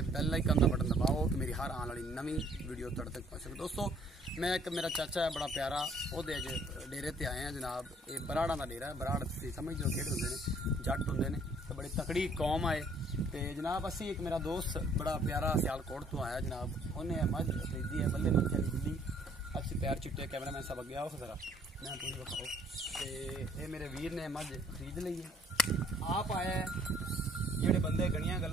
ਬੈਲ ਆਈਕਨ ਦਾ ਬਟਨ ਦਬਾਓ ਕਿ ਮੇਰੀ ਹਰ ਆਉਣ ਵਾਲੀ ਨਵੀਂ ਵੀਡੀਓ ਤੁਹਾਡੇ ਤੱਕ ਪਹੁੰਚ ਸਕੇ। ਦੋਸਤੋ ਮੈਂ ਇੱਕ ਮੇਰਾ ਚਾਚਾ ਹੈ ਬੜਾ ਪਿਆਰਾ, ਉਹਦੇ ਅੱਜ ਡੇਰੇ ਤੇ ਆਏ ਆ ਜਨਾਬ। ਇਹ ਬਰਾੜਾਂ ਦਾ ਡੇਰਾ ਹੈ। ਬਰਾੜ ਤੁਸੀਂ ਸਮਝਦੇ ਹੋ ਕਿਹੜੇ ਹੁੰਦੇ ਨੇ, ਜੱਟ ਹੁੰਦੇ ਨੇ ਤੇ ਬੜੀ ਤਕੜੀ ਕੌਮ ਆਏ। ਤੇ ਜਨਾਬ ਅਸੀਂ ਇੱਕ ਮੇਰਾ ਦੋਸਤ ਬੜਾ ਪਿਆਰਾ ਸਿਆਲਕੋਟ ਤੋਂ ਆਇਆ ਜਨਾਬ, ਉਹਨੇ ਮੱਝ ਖਰੀਦੀ ਹੈ ਬੱਲੇ ਮੱਝ ਵਾਲੀ ਬਿੱਲੀ। ਅਸੀਂ ਪੈਰ ਚਿੱਟੇ ਕੈਮਰਾਮੈਨ ਸਾਹਿਬ ਅੱਗੇ ਆਓ ਜ਼ਰਾ मैं पूरी बताओ। तो ये मेरे वीर ने मझ खरीद ली है। आप आया जेडे बंदे गणिया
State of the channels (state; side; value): normal; both; correlation 0.60